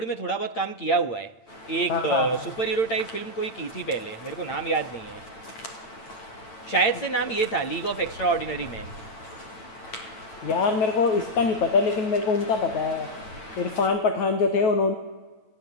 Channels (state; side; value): late; right; 8.8 ms